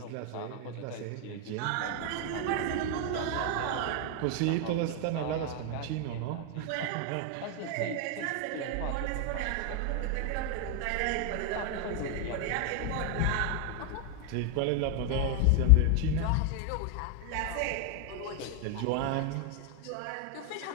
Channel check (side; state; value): both; different; correlation 0.01